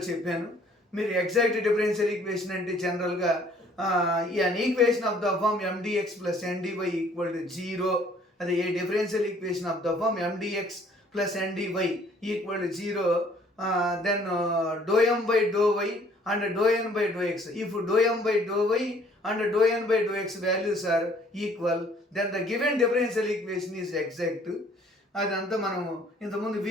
చెప్పాను. మీరు ఎగ్జాక్ట్ డిఫరెన్షియల్ ఈక్వేషన్ అంటే జనరల్గా an equation of the form M dx plus N dy equal to zero. అదే a differential equation of the form M dx plus N dy equal to zero, then dou m by dou y and dou n by dou x. If dou m by dou y and dou n by dou x values are equal, then the given differential equation is exact. అదంతా మనము ఇంతకుముందు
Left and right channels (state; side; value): normal; both; correlation 0.58